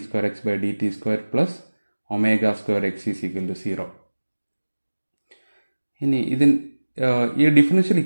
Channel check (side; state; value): both; inverted; correlation -1.00